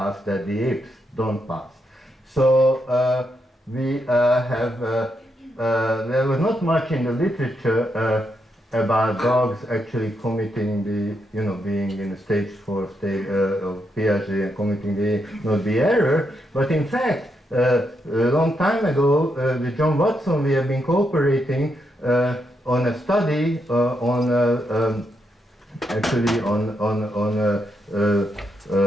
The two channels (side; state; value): both; normal; correlation 0.81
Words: that the apes don't pass. So we have, there was not much in the literature about dogs actually committing the, being in the stage 4 state of Piaget and committing the error. But in fact, a long time ago, with John Watson, we have been cooperating on a study actually on